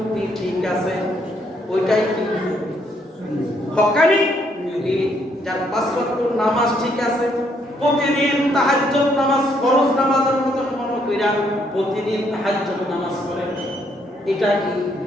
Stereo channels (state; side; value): normal; both; correlation 0.71